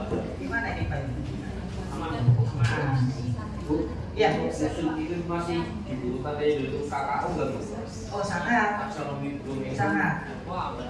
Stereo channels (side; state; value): both; identical; correlation 1.00